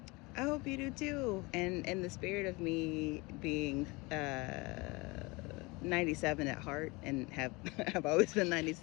I hope you do too. And in the spirit of me being 97 at heart, and have always been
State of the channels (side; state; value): right; quieter; 25.1 dB